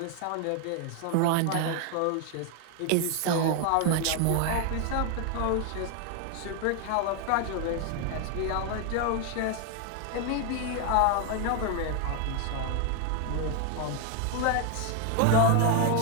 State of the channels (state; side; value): different; both; correlation 0.01